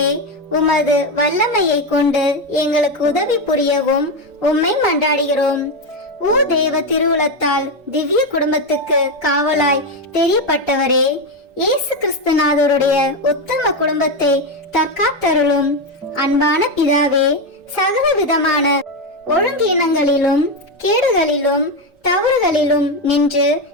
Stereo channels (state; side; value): normal; both; correlation 0.10